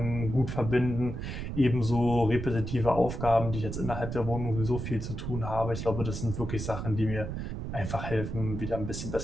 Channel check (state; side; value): noise; right; rumble, 5 dB below the sound